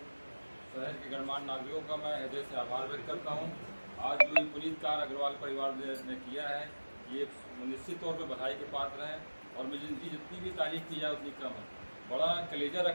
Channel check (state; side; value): inverted; both; correlation -1.00